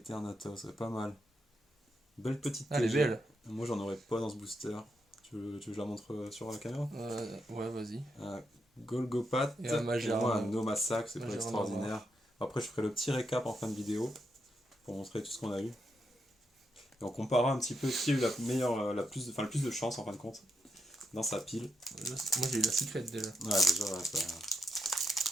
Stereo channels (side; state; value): both; normal; correlation 0.81